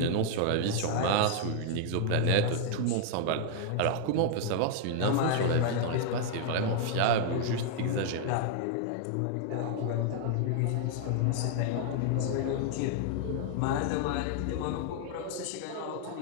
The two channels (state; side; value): different; both; correlation 0.00